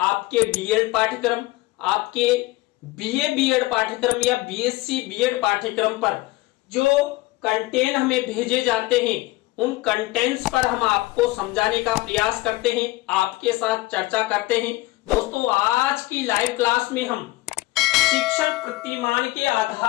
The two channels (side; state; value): right; quieter; 20.1 dB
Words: D.Ed पाठ्यक्रम, आपके BA B.Ed पाठ्यक्रम या BSc B.Ed पाठ्यक्रम पर जो कंटेंट हमें भेजे जाते हैं, उन कंटेंट्स पर हम आपको समझाने का प्रयास करते हैं, आपके साथ चर्चा करते हैं। दोस्तों, आज की लाइव क्लास में हम शिक्षण प्रतिमान के